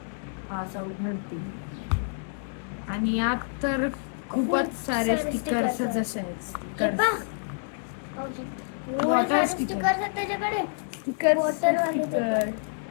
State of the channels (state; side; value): silent; right; digital silence